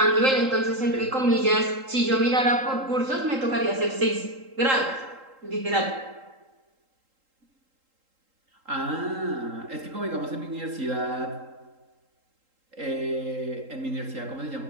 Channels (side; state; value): left; late; 3.8 ms